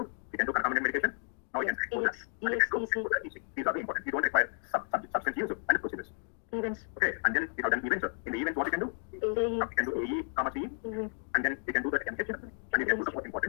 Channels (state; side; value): silent; right; 56 dB below the other